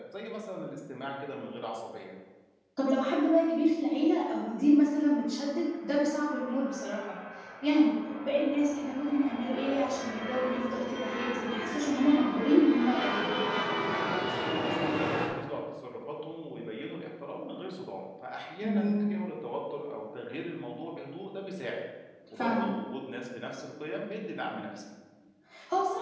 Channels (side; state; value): both; identical; correlation 1.00